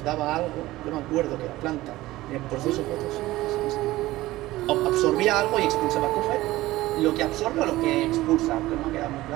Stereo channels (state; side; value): quieter; left; 17.4 dB